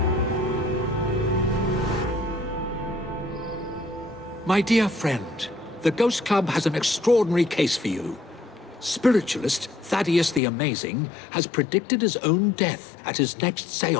My dear friend, the Ghost Club has an extraordinary case for you. Spiritualist Thaddeus the Amazing has predicted his own death at his next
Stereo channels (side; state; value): right; drops out; at 10.4 s